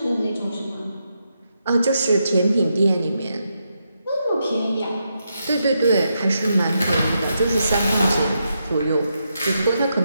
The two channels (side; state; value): both; inverted; correlation -0.83